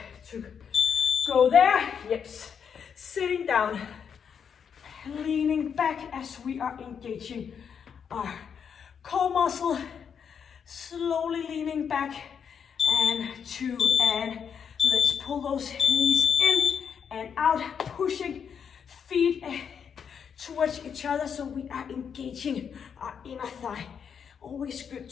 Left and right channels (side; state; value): right; quieter; 7.2 dB